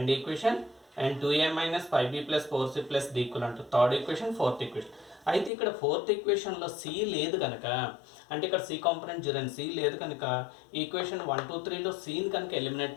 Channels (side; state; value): right; drops out; at 5.5 s